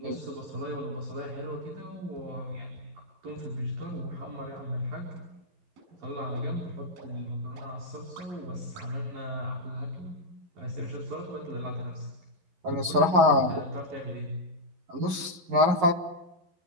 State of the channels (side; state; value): left; late; 11 ms